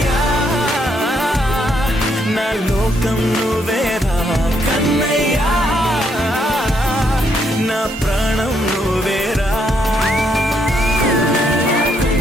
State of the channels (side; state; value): both; normal; correlation 0.74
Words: నా లోకం నువ్వేరా కన్నయ్యా నా ప్రాణం నువ్వేరా